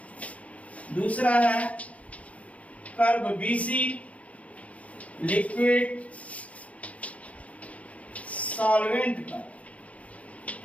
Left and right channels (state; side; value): late; right; 0.066 ms